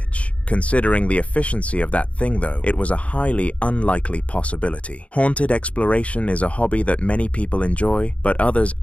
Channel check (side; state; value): right; late; 0.064 ms